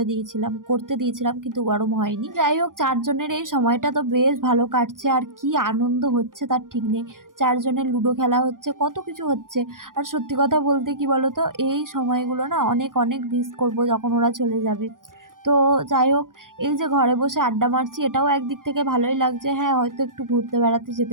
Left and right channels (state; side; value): late; left; 0.90 ms